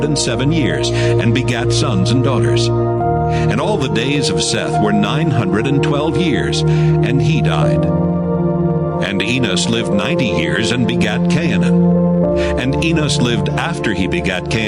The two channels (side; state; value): both; identical; correlation 1.00